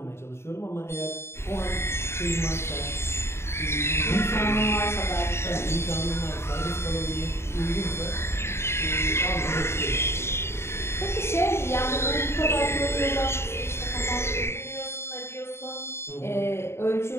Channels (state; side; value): late; right; 0.12 ms